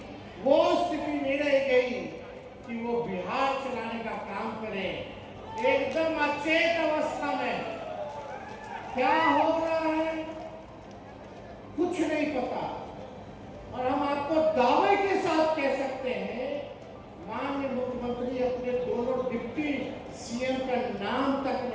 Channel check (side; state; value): both; identical; correlation 1.00